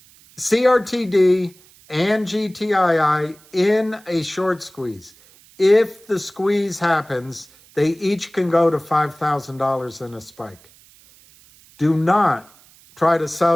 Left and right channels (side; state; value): right; noise; hiss, 27 dB below the sound